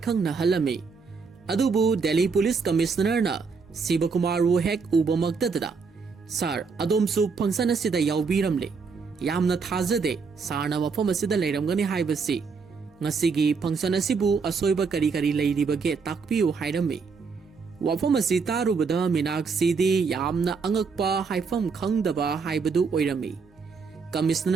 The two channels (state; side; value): quieter; left; 5.0 dB